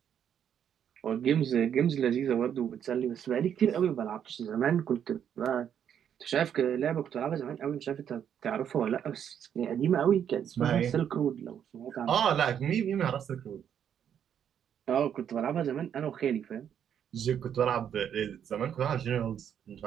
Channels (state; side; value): quieter; left; 8.9 dB